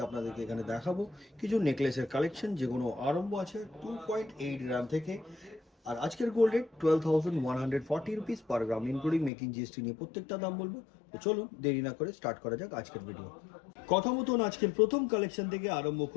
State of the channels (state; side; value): drops out; right; at 9.3 s